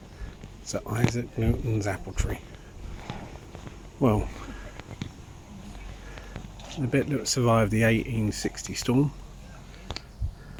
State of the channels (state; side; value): identical; both; correlation 1.00